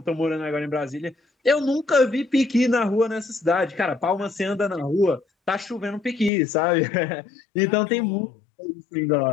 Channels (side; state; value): right; drops out; at 6.3 s